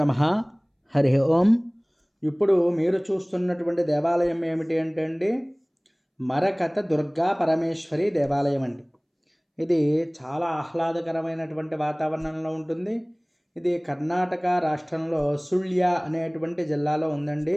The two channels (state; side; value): identical; both; correlation 1.00